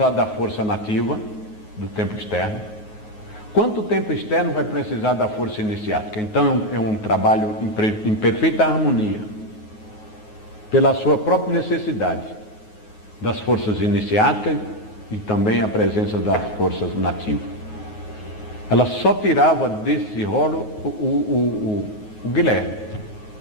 da força nativa do templo externo, quanto o templo externo vai precisar da força iniciática. Então é um trabalho em perfeita harmonia, pela sua própria necessidade das forças iniciáticas e também a presença das forças nativas. Ela só tirava desse rolo o Guilherme.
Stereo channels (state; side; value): late; right; 9.4 ms